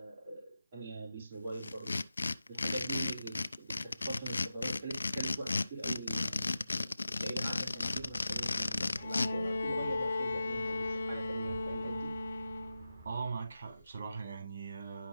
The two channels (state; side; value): inverted; both; correlation -0.92